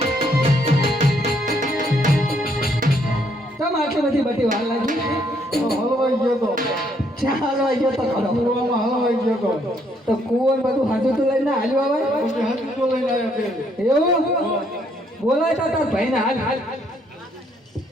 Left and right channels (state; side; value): normal; both; correlation 0.70